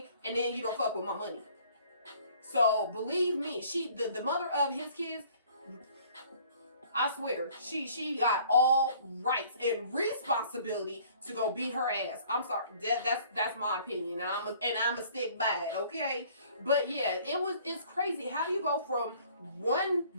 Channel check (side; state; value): both; inverted; correlation -0.55